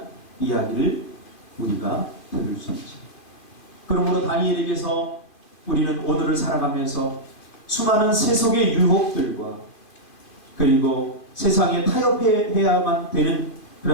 이야기를 우리가 들을 수 있죠. 그러므로 다니엘에게서 우리는 오늘을 살아가면서 수많은 세속의 유혹들과 그리고 세상에 타협해야만 되는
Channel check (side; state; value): right; late; 2.4 ms